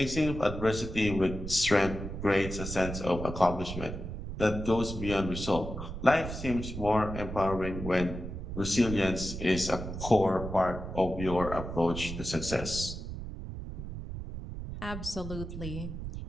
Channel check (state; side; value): noise; right; rumble, 7 dB below the sound